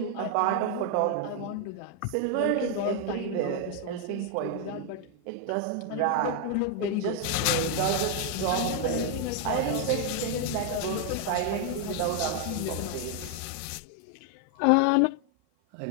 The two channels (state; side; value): different; both; correlation 0.00